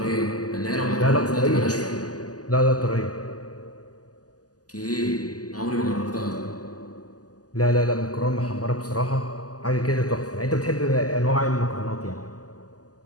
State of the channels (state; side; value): late; right; 0.67 ms